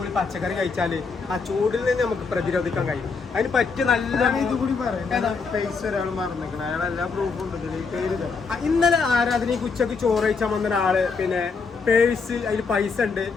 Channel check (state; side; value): quieter; right; 4.8 dB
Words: പച്ചക്കറി കഴിച്ചാല് ആ ചൂടിൽ നിന്ന് നമുക്ക് പ്രതിരോധിക്കാൻ കഴിയും. അതിന് പറ്റിയ നല്ല ഇതുകൂടി ഇന്നലെ ആരാധനയ്ക്ക് ഉച്ചക്ക് ചോറ് കഴിച്ചാൽ വന്ന ഒരാള് പിന്നെ പേഴ്സ് അതിൽ പൈസ ഉണ്ട്,